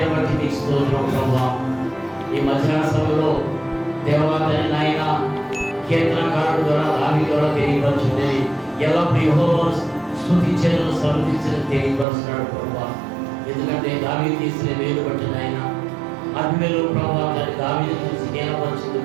బట్టి మీకు స్తోత్రం ప్రభా. ఈ మధ్యాహ్న సభలో దేవాలయ నాయన కీర్తనకారుడు ద్వారా దావీదు ద్వారా తెలియపరచుంది. ఎల్లప్పుడు యెహోవాను స్తుతించను సన్నుతించను తెలియపరుస్తున్నాడు ప్రభా. ఎందుకంటే దావీదు తీసిన వేలు బట్టి నాయన అభిమేలు ప్రభా దాన్ని దావీదు చూసి జ్ఞానపరిచింది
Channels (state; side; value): drops out; left; at 12.1 s